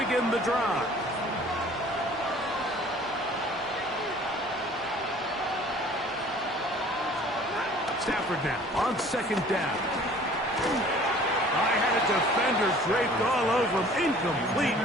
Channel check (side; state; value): both; normal; correlation 0.50